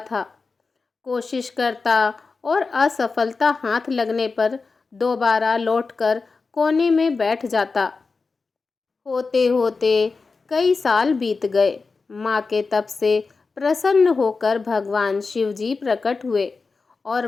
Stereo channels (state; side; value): quieter; right; 4.3 dB